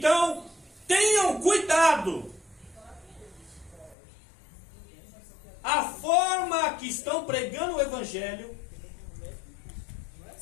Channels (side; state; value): right; drops out; at 4.0 s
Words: tenham cuidado. A forma que estão pregando o evangelho,